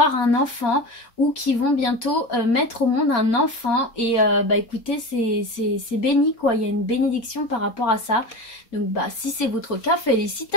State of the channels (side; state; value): right; late; 4.3 ms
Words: un enfant, ou qui vont bientôt mettre au monde un enfant. Et écoutez, c'est béni quoi, il y a une bénédiction par rapport à ça. Donc si c'est votre cas,